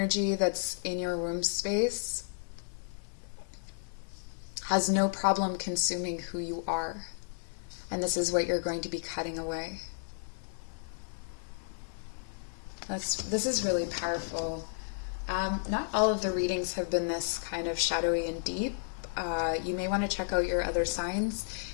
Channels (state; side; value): silent; right; 56 dB below the other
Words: that's in your womb space has no problem consuming who you are. And this is what you're going to be cutting away. This is really powerful. Not all of the readings have been this kind of shadowy and deep. You may want to check out your other signs.